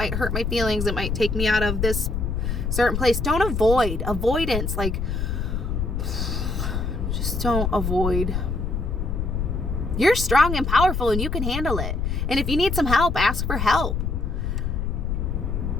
hurt my feelings, it might take me out of this certain place. Don't avoid. Avoidance, like, just don't avoid. You're strong and powerful and you can handle it. And if you need some help, ask for help.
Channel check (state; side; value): noise; left; rumble, 1 dB below the sound